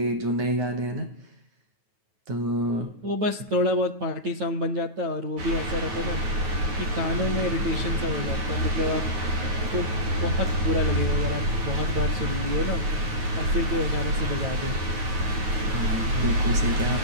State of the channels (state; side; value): late; left; 9.3 ms